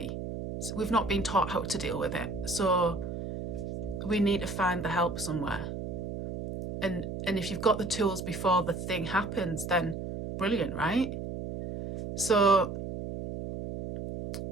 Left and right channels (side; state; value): right; noise; hum, 6 dB below the sound